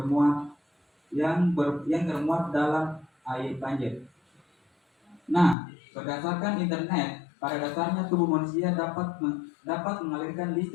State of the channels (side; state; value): right; drops out; at 5.6 s